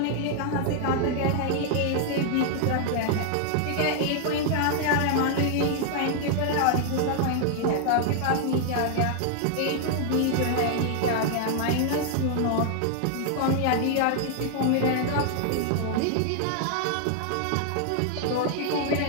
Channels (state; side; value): different; both; correlation 0.00